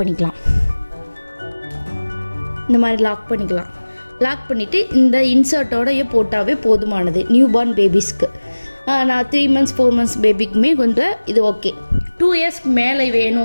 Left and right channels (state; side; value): inverted; both; correlation -1.00